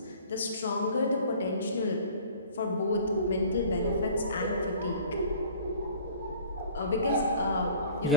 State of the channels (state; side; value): inverted; both; correlation -0.49